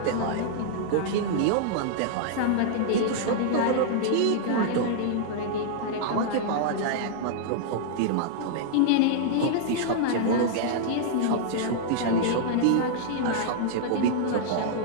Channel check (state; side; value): different; both; correlation -0.01